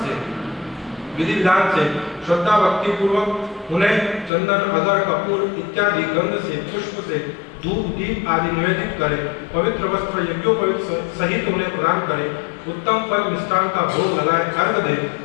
से विधि विधान से श्रद्धा भक्ति पूर्वक उन्हें चंदन, अगर, कपूर इत्यादि गंध से, पुष्प से, धूप, दीप आदि निवेदित करे, पवित्र वस्त्र यज्ञोपवीत सहित उन्हें प्रदान करे, उत्तम फल मिष्टान का भोग लगाए, अर्घ दे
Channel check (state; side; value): drops out; right; at 4.3 s